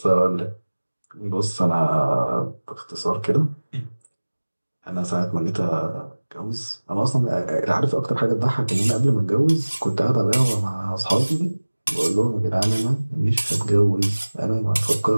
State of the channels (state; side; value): inverted; both; correlation -1.00